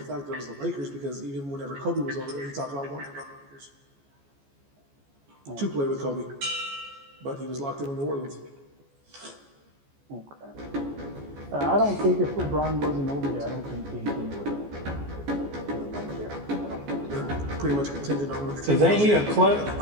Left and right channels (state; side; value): late; left; 14 ms